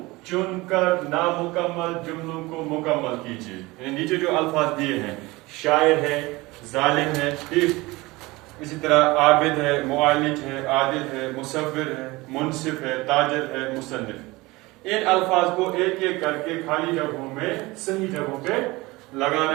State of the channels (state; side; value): quieter; left; 21.7 dB